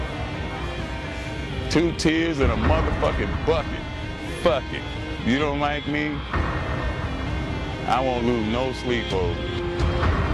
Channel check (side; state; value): both; identical; correlation 1.00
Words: 2 tears in a motherfucking bucket. Fuck it. You don't like me? I won't lose no sleep over you.